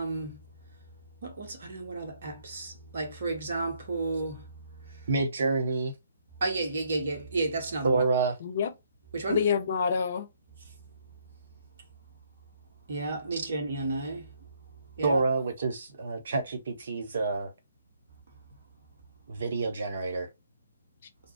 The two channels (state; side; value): inverted; both; correlation -0.70